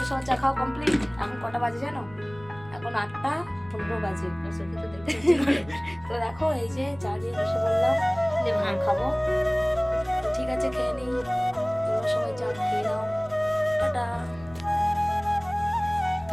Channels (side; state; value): left; noise; rumble, 21 dB below the sound